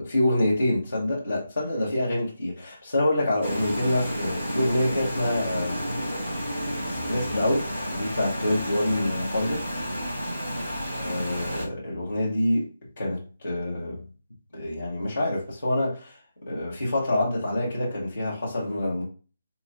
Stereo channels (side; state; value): both; inverted; correlation -0.88